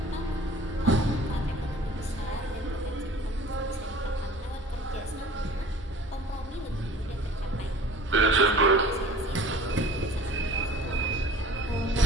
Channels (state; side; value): normal; both; correlation 0.46